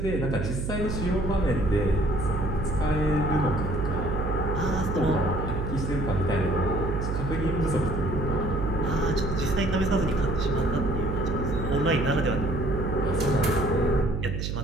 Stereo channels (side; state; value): right; noise; hum, 2 dB below the sound